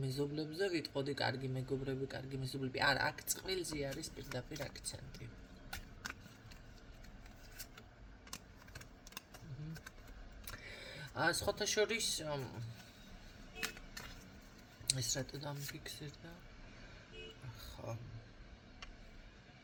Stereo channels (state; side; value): identical; both; correlation 1.00